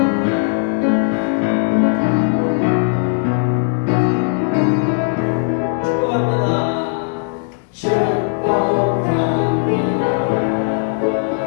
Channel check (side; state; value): right; silent; digital silence